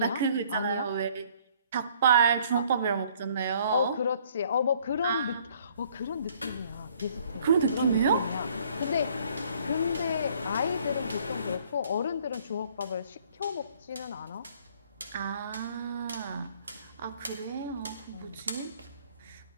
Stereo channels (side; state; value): both; inverted; correlation -0.60